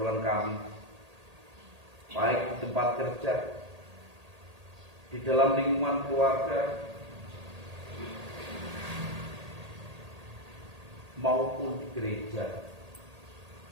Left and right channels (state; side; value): late; left; 1.8 ms